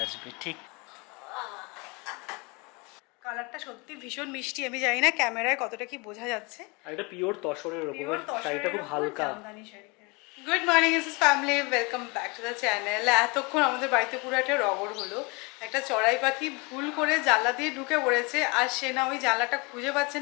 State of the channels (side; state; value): right; quieter; 28.5 dB